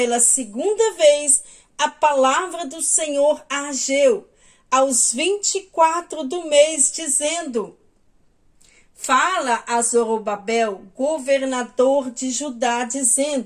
segunda vez a palavra do Senhor a Ageu, aos 24 do mês, dizendo: fala a Zorobabel, governador de Judá,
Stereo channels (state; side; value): identical; both; correlation 1.00